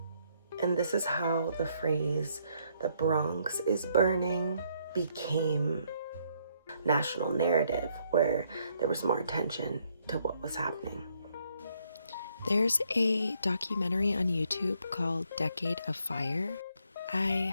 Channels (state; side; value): inverted; both; correlation -0.71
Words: And this is how the phrase, "the Bronx is burning," became national narrative, where there was more attention to what was happening. There's a documentary on YouTube called Decade of Fire.